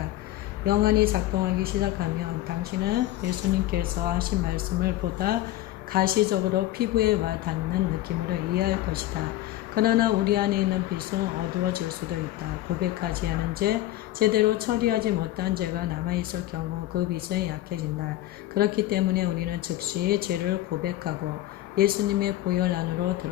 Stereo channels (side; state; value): right; quieter; 15.1 dB